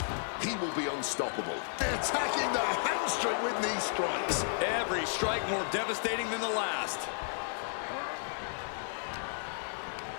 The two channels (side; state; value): right; silent; digital silence